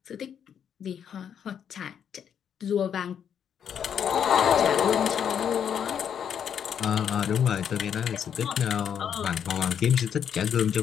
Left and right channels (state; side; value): quieter; right; 8.3 dB